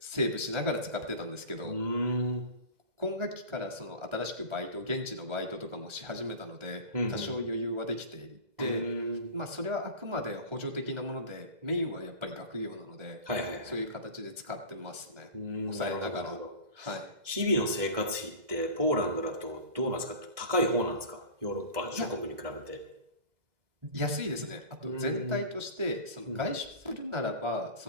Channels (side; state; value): left; late; 2.0 ms